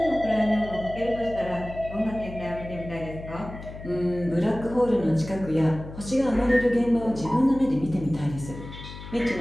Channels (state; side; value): noise; left; hum, 13 dB below the sound